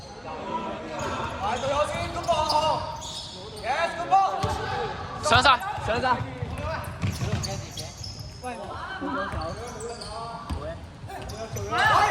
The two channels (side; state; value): both; identical; correlation 1.00